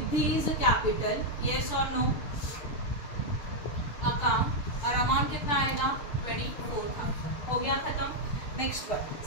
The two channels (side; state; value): right; late; 6.6 ms